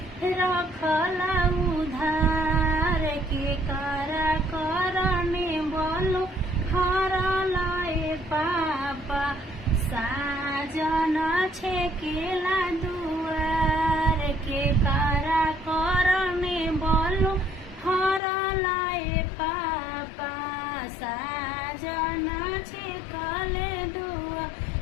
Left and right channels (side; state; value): right; drops out; at 18.2 s